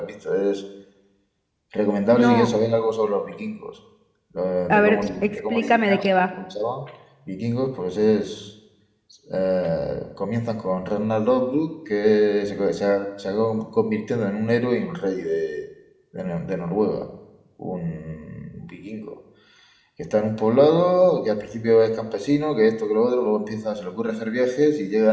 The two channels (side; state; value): both; identical; correlation 1.00